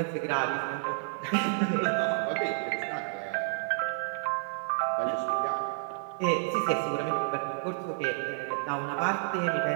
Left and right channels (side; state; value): left; silent; 58 dB below the other